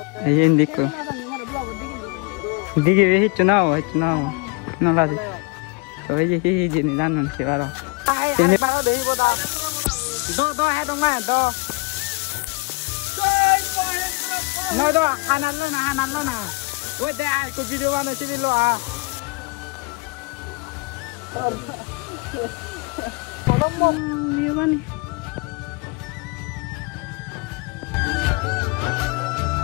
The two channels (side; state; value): right; quieter; 28.2 dB